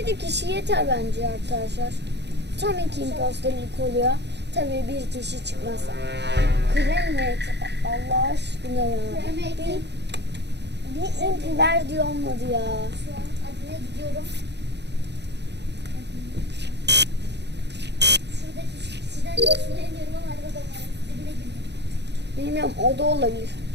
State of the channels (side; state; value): left; late; 0.50 ms